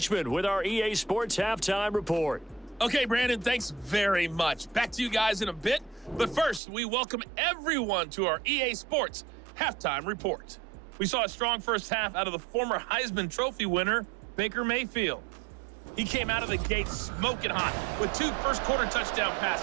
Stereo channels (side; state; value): left; drops out; at 6.6 s